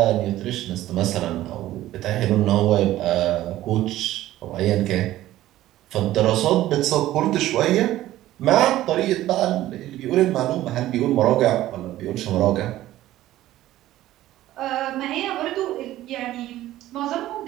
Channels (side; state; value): left; quieter; 14.7 dB